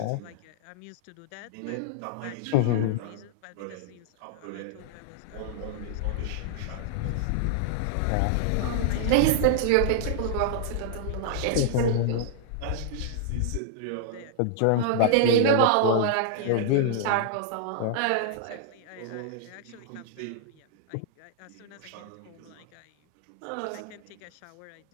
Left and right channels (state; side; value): different; both; correlation -0.01